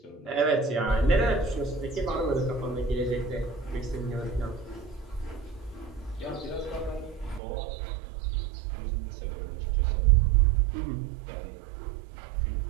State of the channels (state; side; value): drops out; left; at 7.4 s